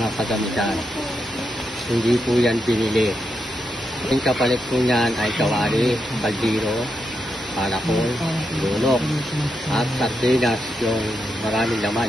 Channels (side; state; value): both; normal; correlation 0.84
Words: kagamitan. Hindi po yan binili. Ang kapalit po niyan ay kawali, kaldiro, panakol, lunok, at sardinas, yung maraming